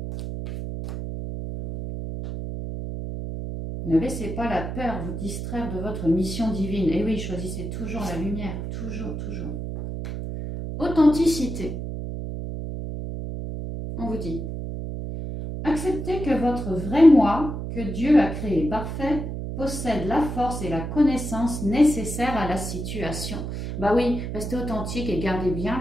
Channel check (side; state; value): right; noise; hum, 5 dB below the sound